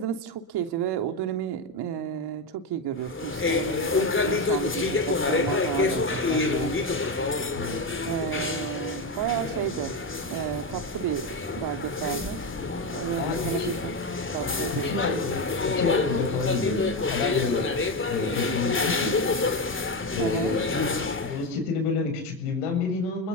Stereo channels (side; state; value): both; normal; correlation 0.12